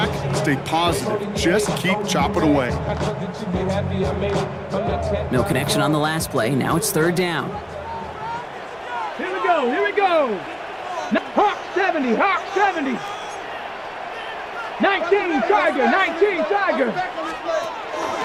stay positive. Just keep chopping away. No connection on the last play. Now it's third down. Here we go. Here we go. Hawk 70. Hawk 70. 19 Tiger. 19 Tiger.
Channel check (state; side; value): identical; both; correlation 1.00